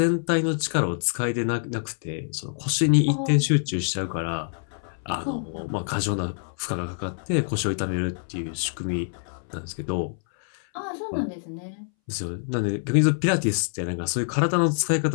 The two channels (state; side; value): silent; right; 61 dB below the other